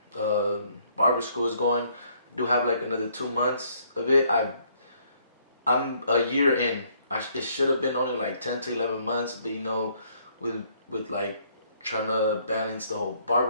barber school is going. I do have like another 2 months of it. I'm a year in. It should have been only like 10 to 11 months, but with like trying to balance the whole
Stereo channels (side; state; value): both; inverted; correlation -0.66